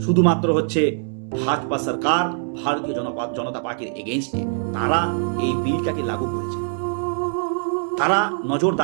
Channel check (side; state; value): left; silent; digital silence